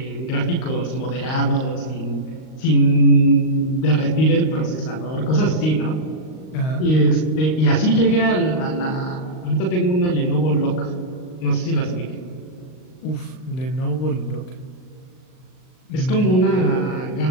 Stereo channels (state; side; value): late; right; 39 ms